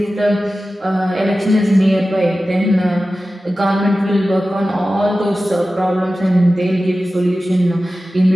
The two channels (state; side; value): normal; both; correlation 0.95